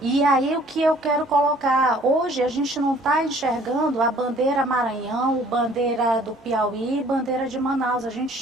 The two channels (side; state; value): both; normal; correlation 0.56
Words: E aí o que eu quero colocar, hoje a gente não está enxergando a bandeira Maranhão, bandeira do Piauí, bandeira de Manaus. A gente